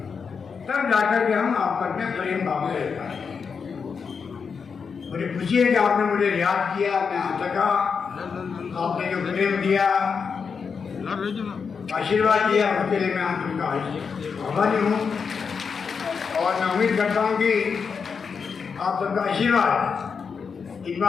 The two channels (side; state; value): right; quieter; 5.8 dB